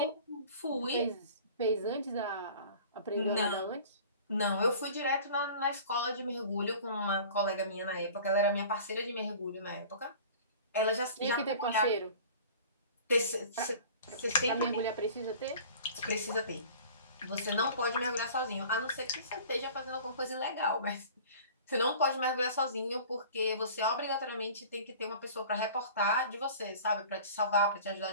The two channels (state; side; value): inverted; both; correlation -0.43